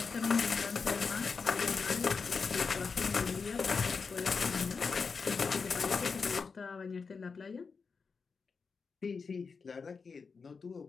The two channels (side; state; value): right; quieter; 5.1 dB